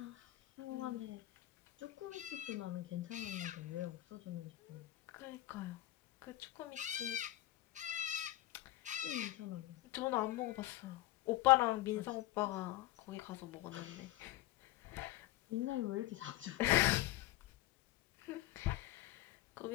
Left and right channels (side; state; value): right; quieter; 16.2 dB